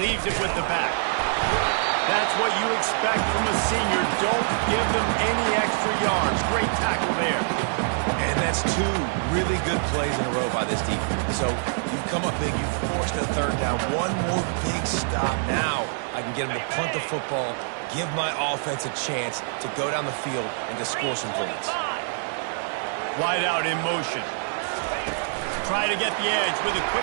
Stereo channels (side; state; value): left; silent; digital silence